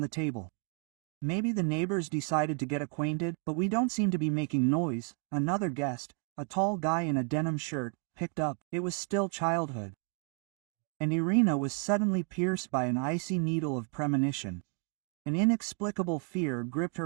table. "Maybe the neighbors decided to get acquainted, but we don't seem to be making noise," another guest, a tall guy in a denim shirt, picked up. It was still childhood. And Irina was suddenly pierced by an icy needle of premonition. An inexplicable fear gripped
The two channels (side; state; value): left; quieter; 38.2 dB